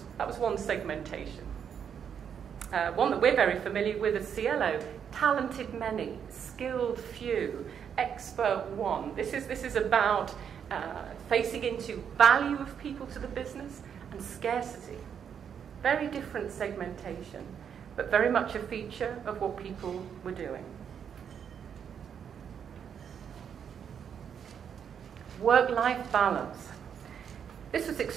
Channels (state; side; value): quieter; left; 7.9 dB